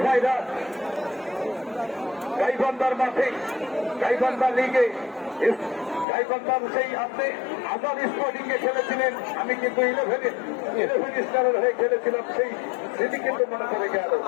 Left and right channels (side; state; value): right; drops out; at 6.1 s